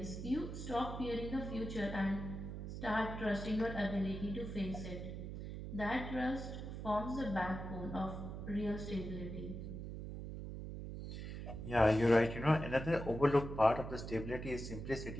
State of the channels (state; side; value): noise; right; hum, 7 dB below the sound